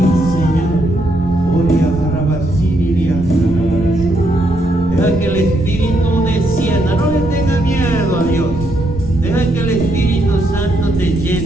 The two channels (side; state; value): right; noise; rumble, 13 dB below the sound